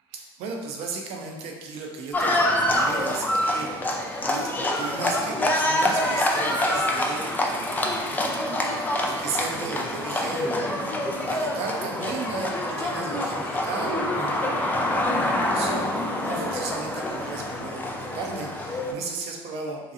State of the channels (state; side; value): normal; both; correlation 0.50